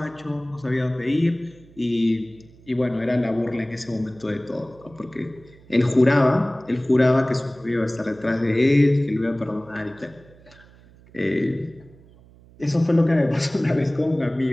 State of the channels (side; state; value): right; noise; hum, 25 dB below the sound